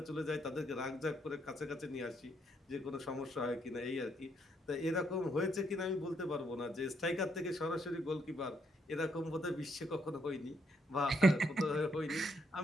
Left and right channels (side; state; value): both; normal; correlation 0.74